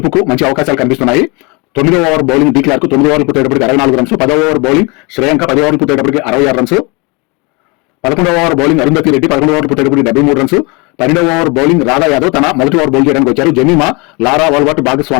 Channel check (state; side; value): quieter; right; 28.8 dB